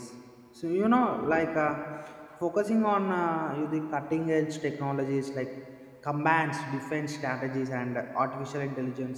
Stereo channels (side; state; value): both; identical; correlation 1.00